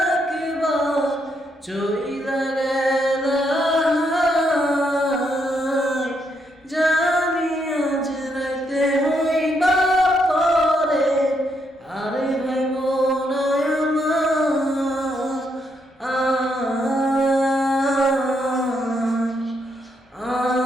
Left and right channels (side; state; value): both; normal; correlation 0.77